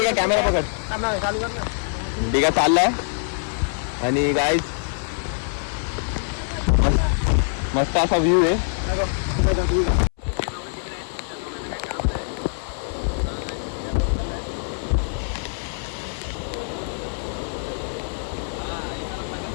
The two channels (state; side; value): silent; right; 63 dB below the other